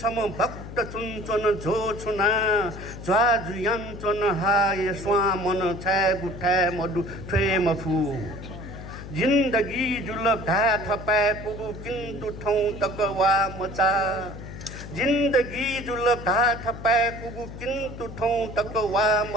박자 춘천은 조추나 좌주양천은 하에 स्वाम는 채구태 모두 퇴모후 जिंदगी जुलब ढा थपै पुगु किन्तु ठौं तकवा मचा जिंदगी जुलब ढा थपै पुगु किन्तु ठौं तकवा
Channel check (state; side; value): noise; left; hum, 12 dB below the sound